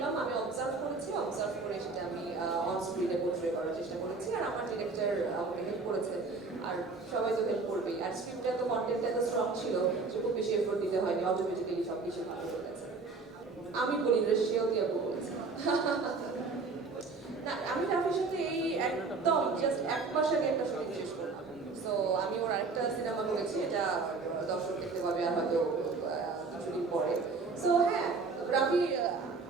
আমি অবজার্ভ করে সেটা আমি অন স্ক্রিনে পোর্ট্রে করার চেষ্টা করেছি, আর আমার ডিরেক্টর আমাকে হেল্প করেছে, আর সবাই তো হেল্প করবেই। আর স্ক্রিপ্টটা তো কন্টেন্টটা তো স্ট্রং ছিল, যে খুব বেশি এফোর্ট দিতে হয়নি, অটোমেটিক্যালি সব কিছু ভালো হয়ে গেছে। আমি বলি না, সেও দিয়ে বলেছে। না, আমি রাফির সাথে এই একদম এক মাস আগে একটা শুটিং শেষ করি। সো আমি ওর একটা সিনেমা করেছি, এটা দর্শক দেখতে পাবে আর হয়তো শুটিং পরে। সো হ্যাঁ, রাফি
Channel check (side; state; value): left; quieter; 4.2 dB